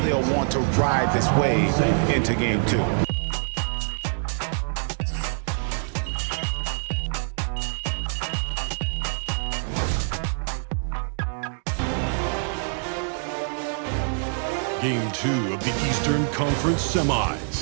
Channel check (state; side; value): silent; left; 62 dB below the other